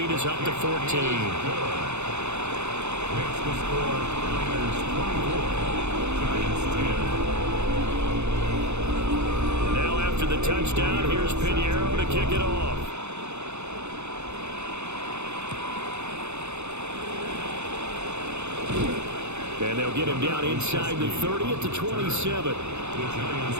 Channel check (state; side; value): late; left; 0.81 ms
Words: is up to 14. Makes the score Niners 24, Giants 10. Now after the touchdown, here's Pinheiro to kick it off. And they'll get him down inside the 30 at the 27.